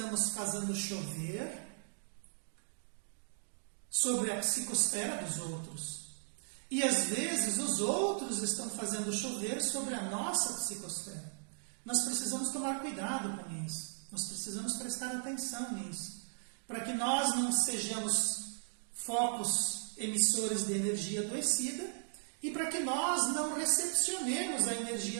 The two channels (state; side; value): silent; left; digital silence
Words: fazendo chover sobre a psicosfera dos outros. E às vezes os outros estão fazendo chover sobre a nossa psicosfera. Nós precisamos tomar cuidado com isso. Nós precisamos prestar atenção nisso. Para que nós não sejamos focos emissores de energia adoecida e para que nós não recepcionemos a